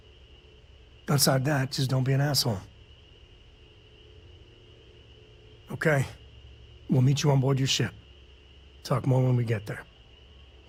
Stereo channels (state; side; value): identical; both; correlation 1.00